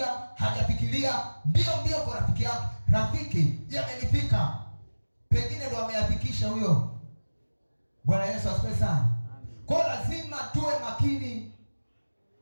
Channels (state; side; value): inverted; both; correlation -1.00